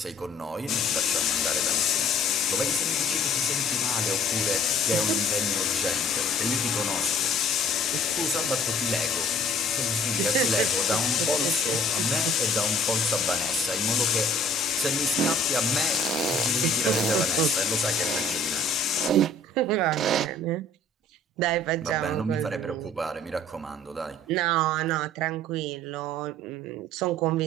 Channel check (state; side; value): normal; both; correlation 0.54